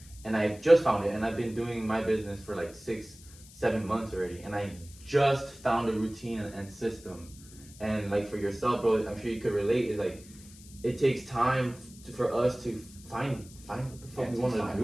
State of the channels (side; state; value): left; noise; hiss, 21 dB below the sound